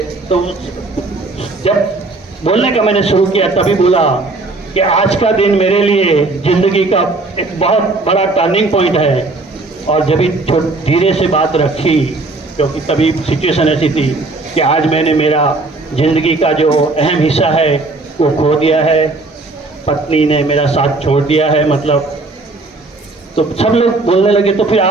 तो जब बोलने का मैंने शुरू किया तभी बोला कि आज का दिन मेरे लिए ज़िंदगी का एक बहुत बड़ा टर्निंग पॉइंट है। और जब धीरे से बात रखी, क्योंकि तभी सिचुएशन ऐसी थी कि आज मैंने मेरा ज़िंदगी का जो अहम हिस्सा है वो खो दिया है, पत्नी ने मेरा साथ छोड़ दिया है, तो सब लोग बोलने लगे तो फिर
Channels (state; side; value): quieter; left; 3.3 dB